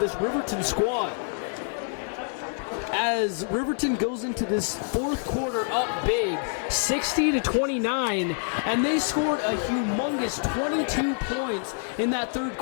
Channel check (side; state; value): right; silent; 60 dB below the other